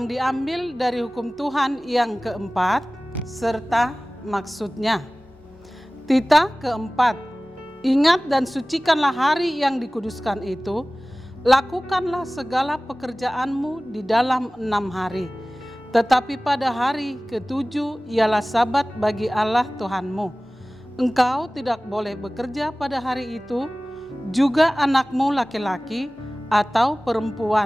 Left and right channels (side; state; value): both; normal; correlation 0.98